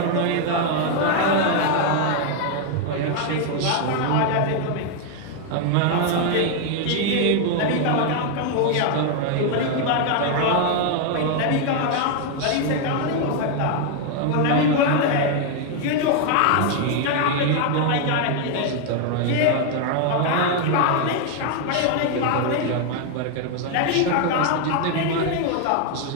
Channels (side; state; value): both; different; correlation 0.00